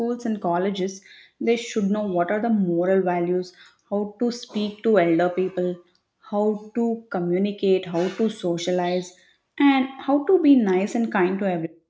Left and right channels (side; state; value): both; identical; correlation 1.00